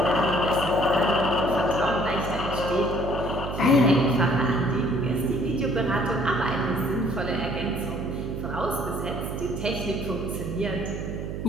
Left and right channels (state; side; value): noise; right; hum, 6 dB below the sound